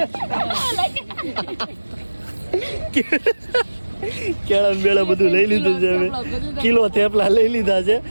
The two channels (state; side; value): inverted; both; correlation -1.00